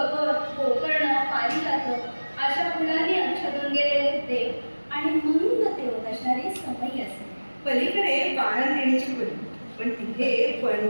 गोकर्ण, पारिजात अशा फुलांनी आच्छादून गेलेले देव आणि मंद तेवत असणारे समई असे. पलीकडे बाळंतिणीची खोली, पण तिथे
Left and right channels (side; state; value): both; inverted; correlation -1.00